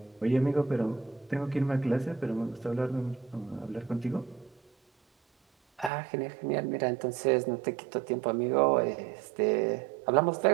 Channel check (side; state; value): left; drops out; at 5.9 s